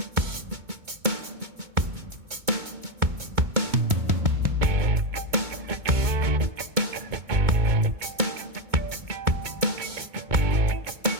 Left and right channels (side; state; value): left; late; 2.2 ms